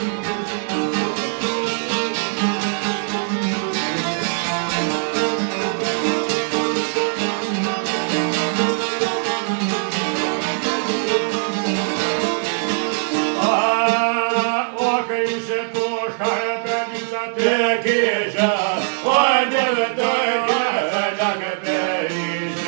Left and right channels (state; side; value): silent; left; digital silence